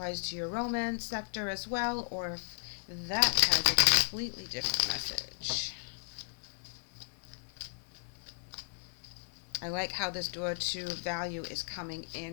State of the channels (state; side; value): silent; right; digital silence